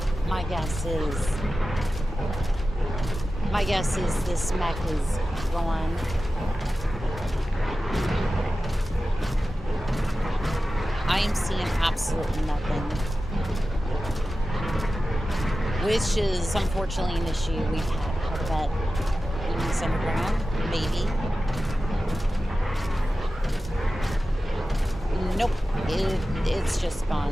my guess is this mech is gone. I am seeing absolutely nothing, which is unfortunately an issue we've had quite a bit. Enemies underground, maybe. Nope, it's just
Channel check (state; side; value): normal; both; correlation 0.94